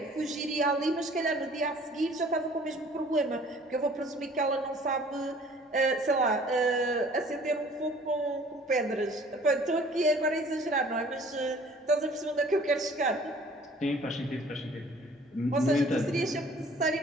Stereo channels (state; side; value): normal; both; correlation 0.53